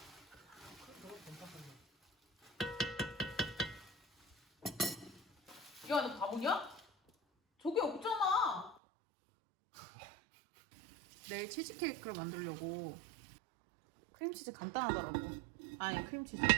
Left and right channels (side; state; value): left; drops out; at 8.8 s